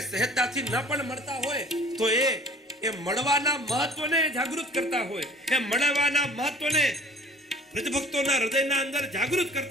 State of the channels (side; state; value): both; normal; correlation 0.49